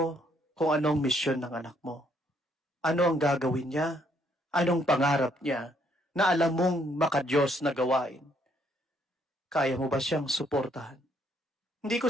kung anong misyon ng anak mo, ano ang gagawin niya, anong pangarap niya, na alam mong makadiyos na gawain, kaya mo ba siyang suportahan? Hindi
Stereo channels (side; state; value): both; normal; correlation 0.69